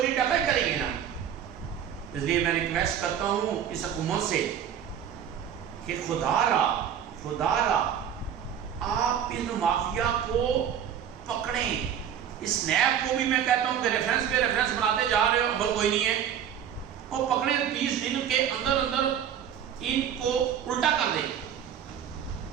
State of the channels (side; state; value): left; quieter; 9.1 dB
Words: ڈکائی کریں گے نا۔ اس لیے میں ریکویسٹ کرتا ہوں اس حکومت سے کہ خدا را آپ ان مافیا کو پکڑیں۔ اس نیب کو بھی میں کہتا ہوں کہ ریفرنس پہ ریفرنس بناتے جا رہے ہو، عمل کوئی نہیں ہے، اور پکڑیں 20 دن کے اندر ان کو الٹا کر دیں۔